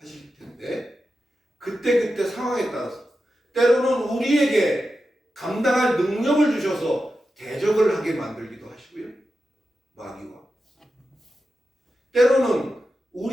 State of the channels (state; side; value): normal; both; correlation 0.91